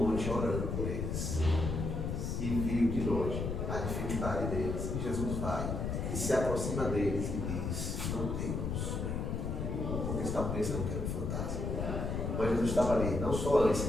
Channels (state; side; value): noise; left; rumble, 2 dB below the sound